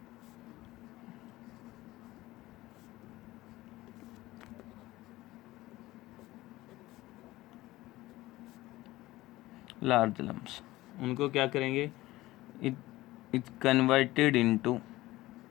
Large lumps, उनको क्या करेंगे, it converted into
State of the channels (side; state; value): right; quieter; 17.9 dB